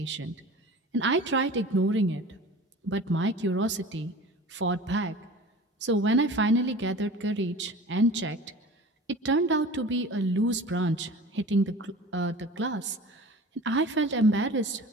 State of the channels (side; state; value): both; normal; correlation 0.39